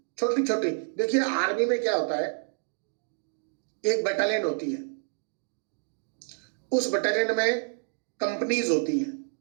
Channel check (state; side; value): silent; left; 59 dB below the other